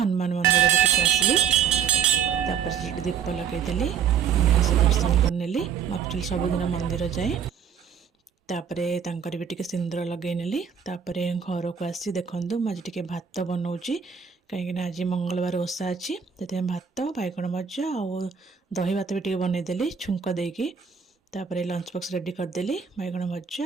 मंदिर टिके आसली तापर सेठी दीप लगेदेली बढ़िया से दर्शन करनेली एक्चुअली सबुदिन मंदिर जाए तापरे तांकर भी टिके सिंदूर लगे नेली तापरे घर को आसी देखंतु आज टिके भात बनाउची कहीं आज मंगलवार ओषा अच्छी से भात बैगण भजा और दही भात भी टिके बनै देली छुंक देकी तापरे लंच बॉक्स रेडी करदेली बैगण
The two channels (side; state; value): left; quieter; 7.4 dB